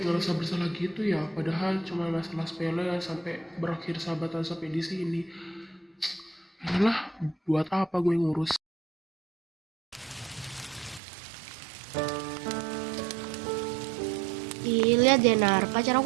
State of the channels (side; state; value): left; drops out; at 11.0 s